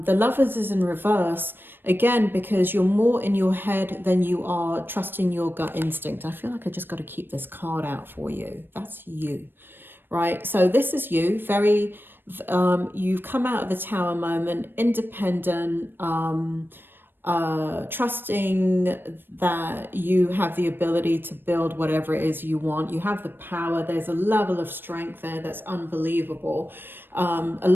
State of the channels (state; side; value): late; left; 0.097 ms